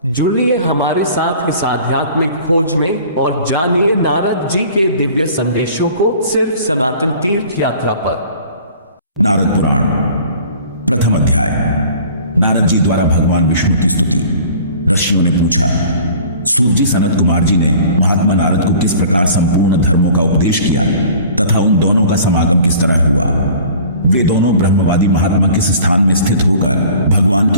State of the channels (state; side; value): inverted; both; correlation -0.48